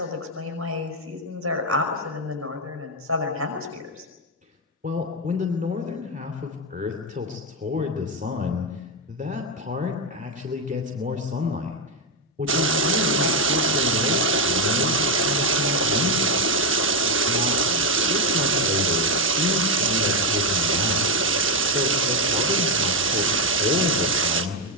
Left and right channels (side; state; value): both; normal; correlation 0.06